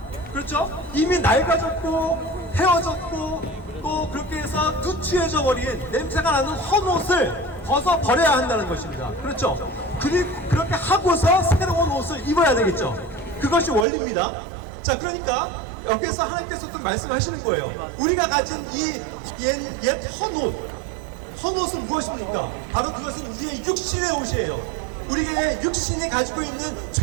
그렇죠? 이미 낡아졌고 헤어졌고 또 그렇게 해서 누추해져 버린 냄새가 나는 헌옷을 벗어 버려야 한다는 것입니다. 그렇죠? 그리고 그렇게 하고서 새로운 옷을 입어야 되겠죠. 그것이 원리입니다. 자, 그러니까 여기서 하나님께서 또 말씀하시는 거예요. 우리가 가진 이 옛 헌옷은 무엇입니까? 바로 그것은 우리의 육신의 옷이에요. 우리의 육신이 가지고 있는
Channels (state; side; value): drops out; left; at 13.9 s